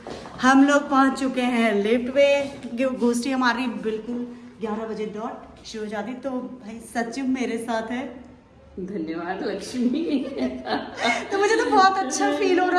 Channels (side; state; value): both; identical; correlation 1.00